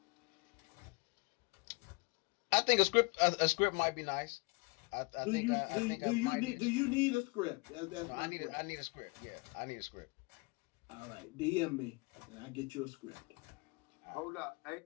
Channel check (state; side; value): quieter; right; 28.6 dB